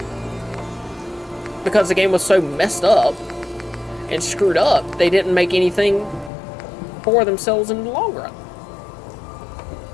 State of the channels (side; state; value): right; drops out; at 6.3 s